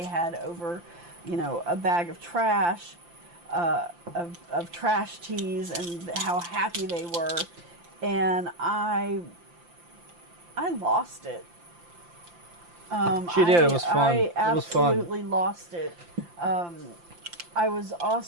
had over, you know, a bag of trash, of trash teas, and how happy they were. And I lost it. She did. It was fun. I It was fun. absolutely lost it. I was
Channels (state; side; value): late; left; 5.8 ms